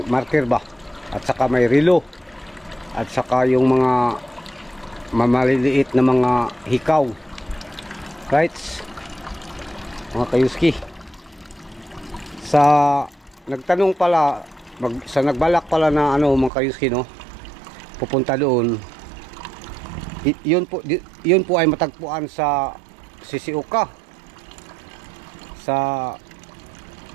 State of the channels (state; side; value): drops out; left; at 16.5 s